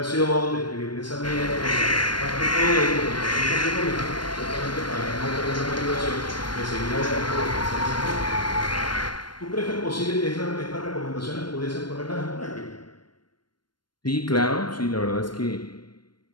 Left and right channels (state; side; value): late; right; 0.72 ms